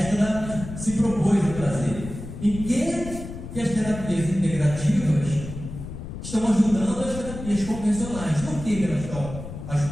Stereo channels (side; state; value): left; noise; rumble, 10 dB below the sound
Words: se propôs a trazer. Em que as terapias integrativas estão ajudando as terapias convencionais? Por que elas estão